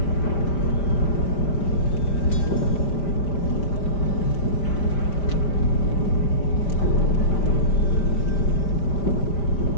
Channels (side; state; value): right; late; 5.1 ms